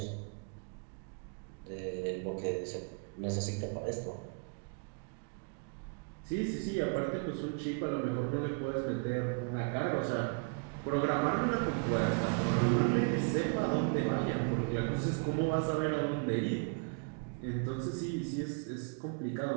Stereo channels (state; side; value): quieter; left; 36.7 dB